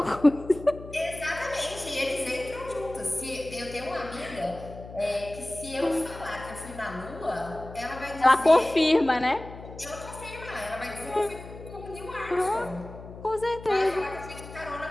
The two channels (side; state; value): left; noise; hum, 14 dB below the sound